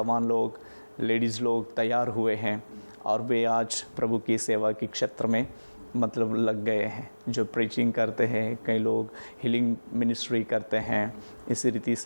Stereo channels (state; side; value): inverted; both; correlation -1.00